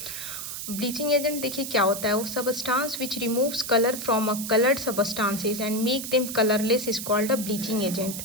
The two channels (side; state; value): right; noise; hiss, 7 dB below the sound